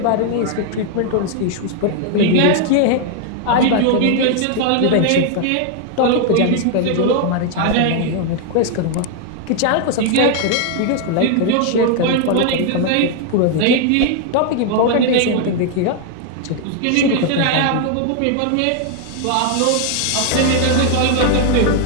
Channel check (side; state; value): both; different; correlation 0.00